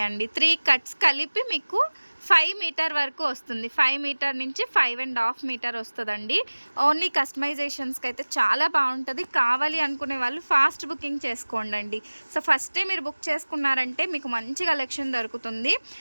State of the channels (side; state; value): both; inverted; correlation -1.00